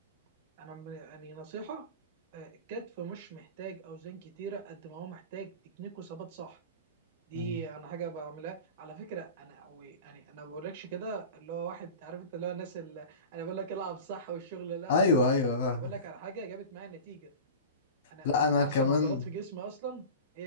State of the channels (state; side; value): inverted; both; correlation -0.33